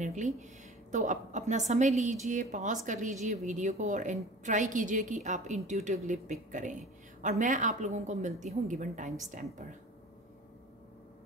तो अपना समय लीजिए, पॉज कर लीजिए वीडियो को और ट्राई कीजिए कि आप इंट्यूटिवली पिक करें। और मैं आप लोगों को मिलती हूँ गिवन टाइम स्टैम्प पर।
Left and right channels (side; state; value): both; normal; correlation 0.41